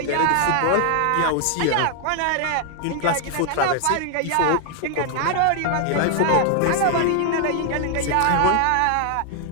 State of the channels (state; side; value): different; both; correlation 0.00